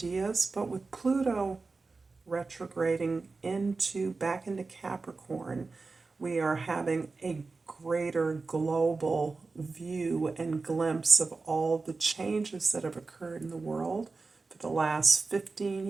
But with Pluto retrograding back into Capricorn, we are having a greater global view and glimpse of all the changes that have occurred in the world for the last 15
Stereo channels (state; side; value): quieter; left; 4.0 dB